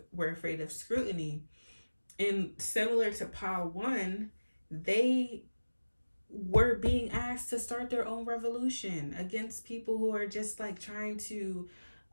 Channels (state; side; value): inverted; both; correlation -1.00